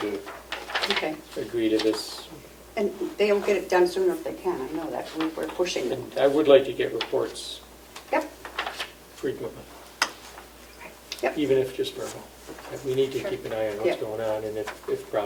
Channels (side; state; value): both; identical; correlation 1.00